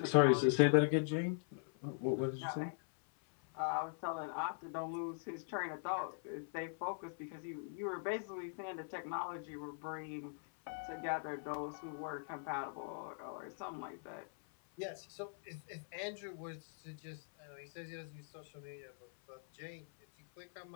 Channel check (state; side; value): silent; right; 50 dB below the other